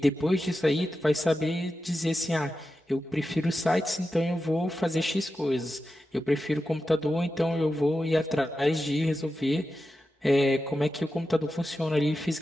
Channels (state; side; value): normal; both; correlation 0.91